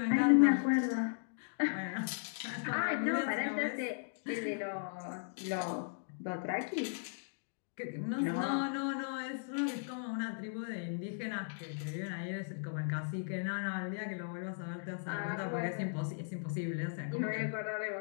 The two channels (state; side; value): silent; right; digital silence